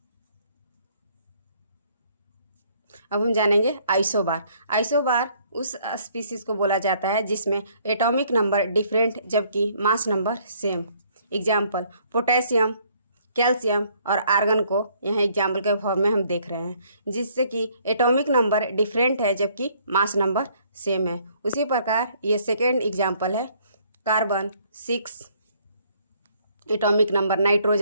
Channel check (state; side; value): inverted; both; correlation -0.64